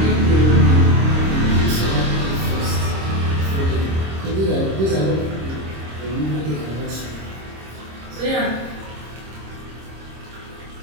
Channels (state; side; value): late; left; 26 ms